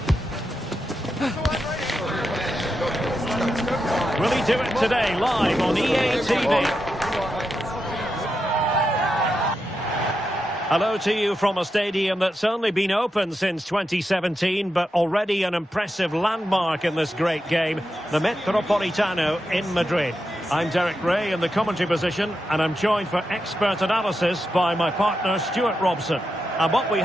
Will he do it today, live on EA TV? Hello to you from a stadium that's only been open since 2017, but already an impressive landmark in this great game, the Metropolitano in Madrid. I'm Derek Ray in the commentary position, and I'm joined for expert analysis by my partner Stuart Robson. And what we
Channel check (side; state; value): both; normal; correlation 0.87